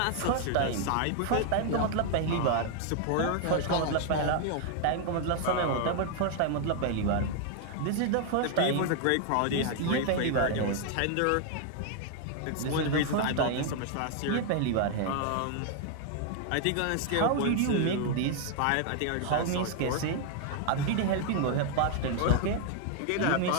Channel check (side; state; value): both; different; correlation 0.00